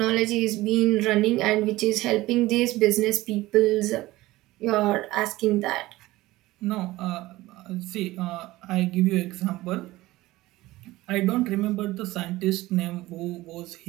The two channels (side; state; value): left; quieter; 18.1 dB